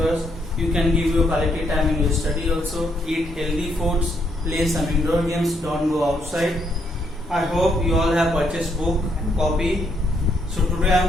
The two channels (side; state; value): both; normal; correlation 0.74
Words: You can give your quality time in your study also. Eat healthy foods, play some indoor games, don't go outside. I hope you all have purchased book and copy. So today I